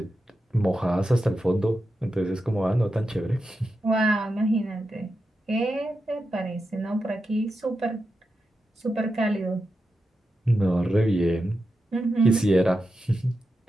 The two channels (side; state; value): both; normal; correlation 0.89